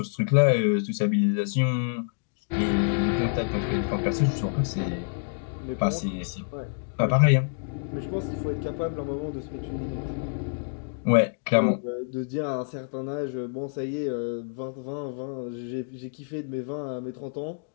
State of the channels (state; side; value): silent; right; digital silence